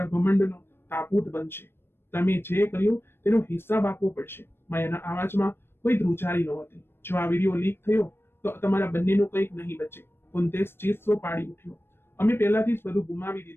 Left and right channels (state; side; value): late; right; 0.11 ms